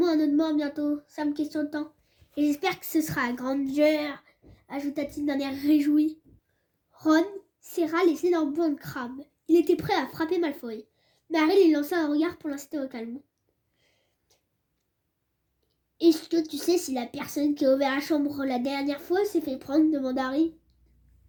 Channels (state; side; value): identical; both; correlation 1.00